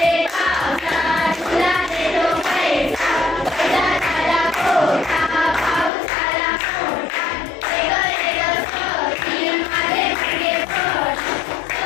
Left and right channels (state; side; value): drops out; right; at 5.9 s